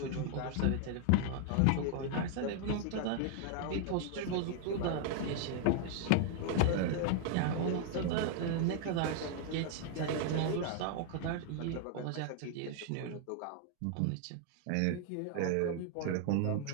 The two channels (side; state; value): both; different; correlation 0.00